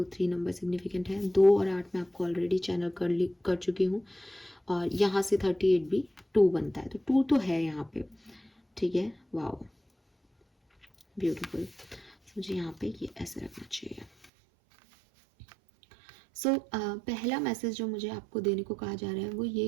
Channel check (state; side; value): drops out; left; at 14.2 s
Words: 3 नंबर सिग्निफिकेंट है। 2 और 8 मैं आपको ऑलरेडी चैनल कर चुकी हूँ, और यहाँ से 38 भी 2 बनता है, तो 2 तो है यहाँ पे। ठीक है, वाओ, ब्यूटीफुल। मुझे यहाँ पे ये ऐसे रखना चाहिए। पहला मैसेज जो मुझे आपको देने को कहा जा रहा है वो